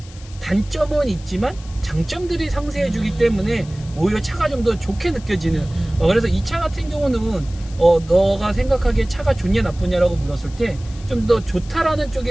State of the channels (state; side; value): noise; left; hiss, 22 dB below the sound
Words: 단점은 있지만 장점들이 상쇄해 주기 때문에 오히려 차가 좀 더 좋게 느껴지는 그래서 이 차 같은 경우는 너가 생각하기에 차가 좋냐 나쁘냐라고 물었을 때 좀 더 좋다라는